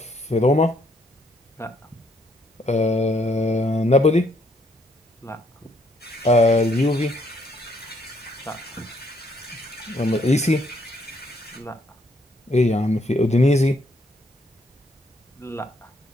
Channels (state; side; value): normal; both; correlation 0.70